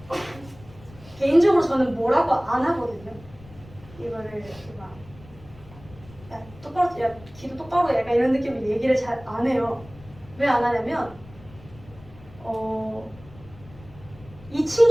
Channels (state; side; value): noise; left; rumble, 21 dB below the sound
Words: 개인적으로 저는 뭐라고 안 하거든요. 이거를 이렇게 막, 야 똑바로, 야 기도 똑바로, 약간 이런 느낌으로 얘기를 잘 안 해요. 왜 안 하냐면 이